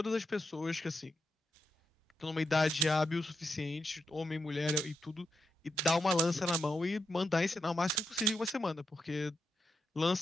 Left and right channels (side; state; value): both; normal; correlation 0.84